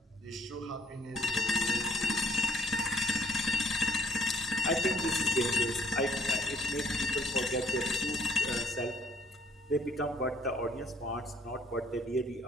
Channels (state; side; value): normal; both; correlation 0.61